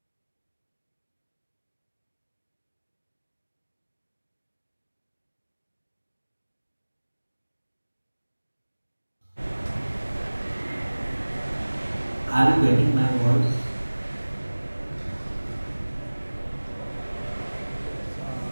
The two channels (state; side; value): inverted; both; correlation -1.00